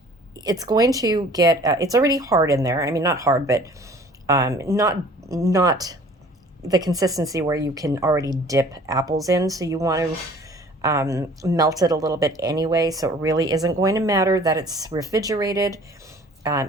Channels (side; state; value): both; normal; correlation 0.50